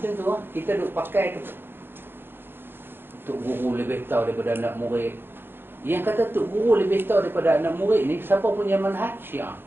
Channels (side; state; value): left; late; 0.10 ms